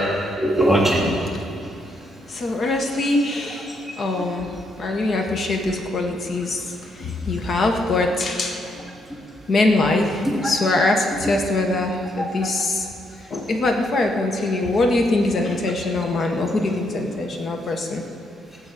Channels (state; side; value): normal; both; correlation 0.76